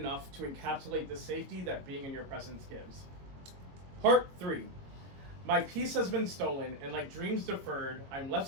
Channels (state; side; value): late; left; 22 ms